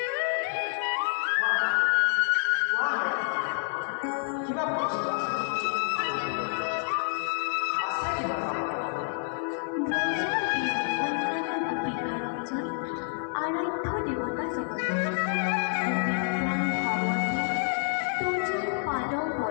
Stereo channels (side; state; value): right; silent; 59 dB below the other